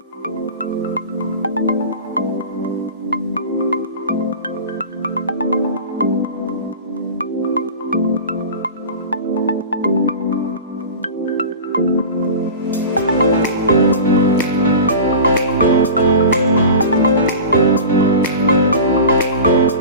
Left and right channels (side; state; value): both; inverted; correlation -0.34